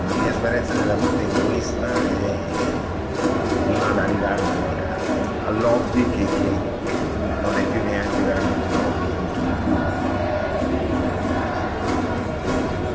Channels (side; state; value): both; identical; correlation 1.00